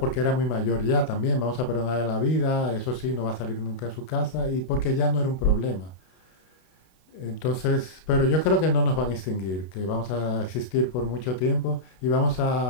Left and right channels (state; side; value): late; right; 32 ms